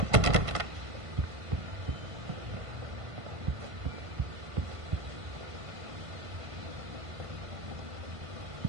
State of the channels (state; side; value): late; left; 1.5 ms